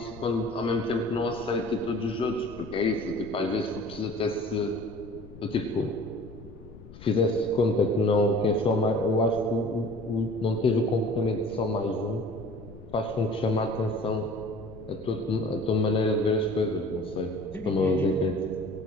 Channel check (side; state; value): left; noise; rumble, 17 dB below the sound